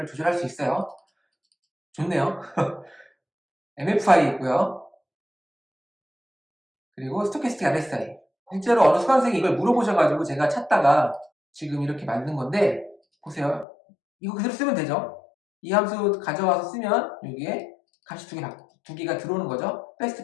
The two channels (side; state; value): right; drops out; at 13.7 s